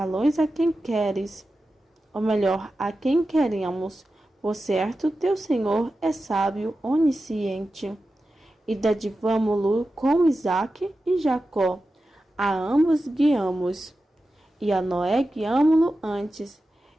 a quem queres, ou melhor, a quem queremos. Por certo, teu Senhor é sábio, onisciente. E dadivamo-lo com Isaque e Jacó. A ambos guiamos. E a Noé guiamo-lo antes,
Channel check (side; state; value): both; normal; correlation 0.92